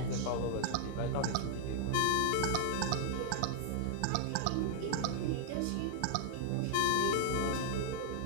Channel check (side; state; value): both; different; correlation 0.00